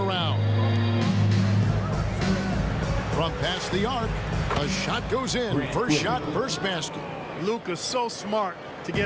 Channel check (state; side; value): identical; both; correlation 1.00